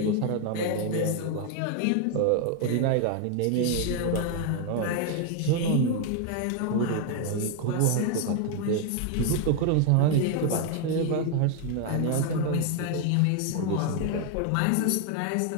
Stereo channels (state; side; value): different; both; correlation 0.01